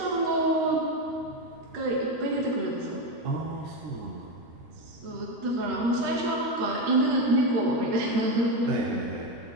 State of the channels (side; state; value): left; late; 13 ms